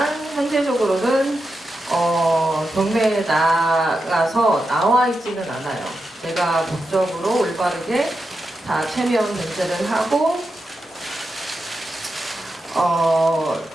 현재적으로는 경매에 나가서 나와 있지는 않아요. 제가 법적으로 올바르게 다 체면 변제를 하고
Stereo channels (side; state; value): both; normal; correlation 0.88